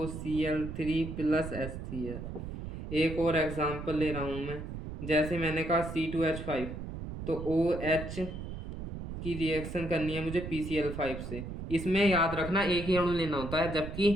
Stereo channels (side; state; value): right; noise; rumble, 8 dB below the sound